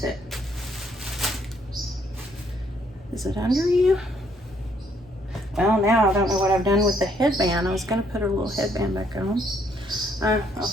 it? Is it under you? Well, now I don't know what I've done with the headband. I was going to put her little headband back on. I'll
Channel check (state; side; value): normal; both; correlation 0.68